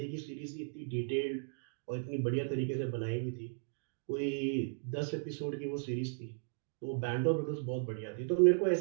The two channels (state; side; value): silent; left; digital silence